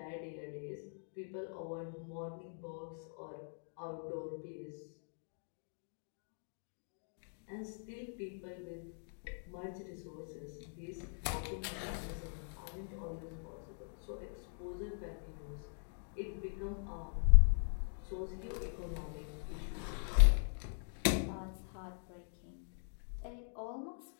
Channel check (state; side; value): silent; right; digital silence